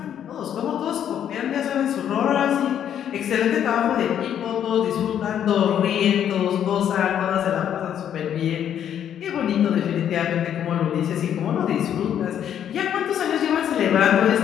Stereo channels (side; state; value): right; quieter; 9.6 dB